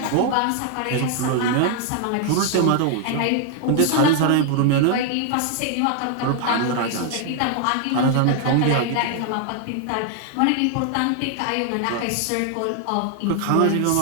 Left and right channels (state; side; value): different; both; correlation 0.00